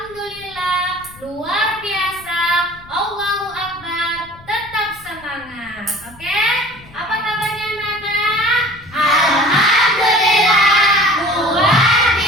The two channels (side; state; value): left; noise; rumble, 23 dB below the sound